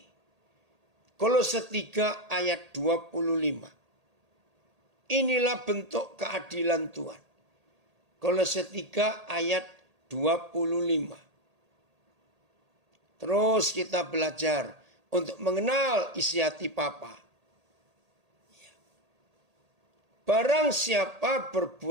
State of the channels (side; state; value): left; late; 1.8 ms